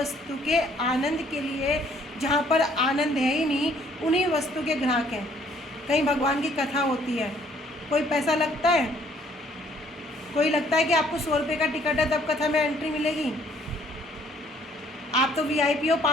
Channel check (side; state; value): both; normal; correlation 0.63